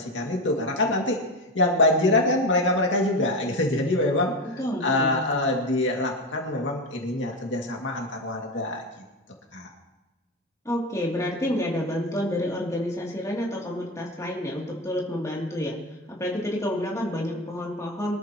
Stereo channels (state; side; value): normal; both; correlation 0.19